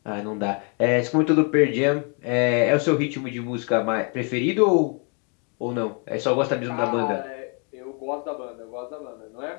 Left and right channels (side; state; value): right; quieter; 37.5 dB